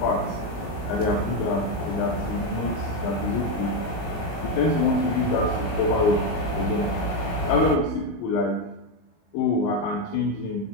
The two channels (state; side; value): late; right; 19 ms